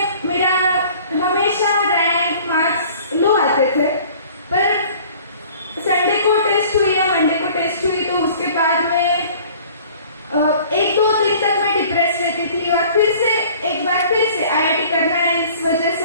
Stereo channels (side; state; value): both; inverted; correlation -0.50